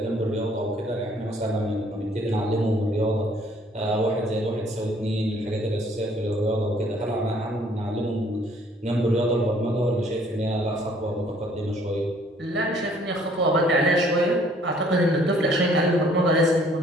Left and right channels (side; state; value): both; normal; correlation 0.60